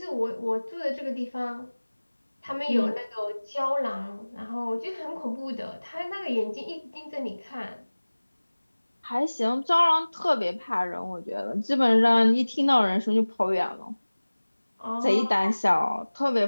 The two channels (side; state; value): both; inverted; correlation -1.00